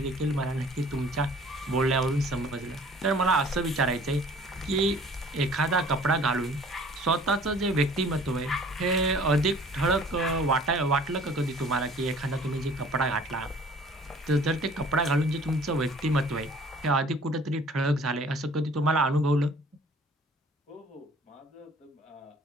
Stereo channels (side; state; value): both; normal; correlation 0.51